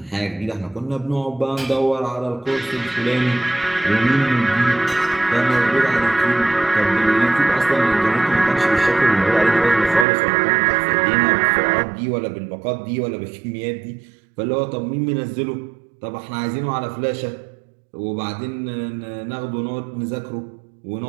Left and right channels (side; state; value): left; drops out; at 10.1 s